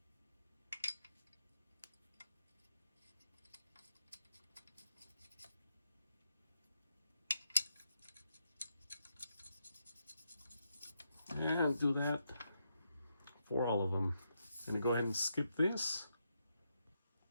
And do that for all of them. I'm gonna go ahead and skip this.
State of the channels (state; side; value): inverted; both; correlation -0.82